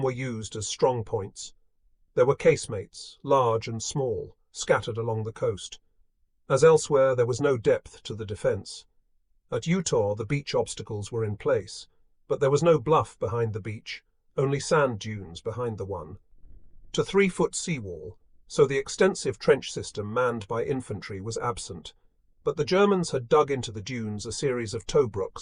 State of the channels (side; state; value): both; identical; correlation 1.00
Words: were used as strong points. There were casemates, large and small, scattered along the coast. As elsewhere, there was no depth to the defence. At Utor, the beach obstacles were in place, but there was no bluff behind the beach, only sand dunes behind the one. To 3-foot seawall, so the extensive trench system manned by infantry was absent, but the Germans had dug into the dunes a series of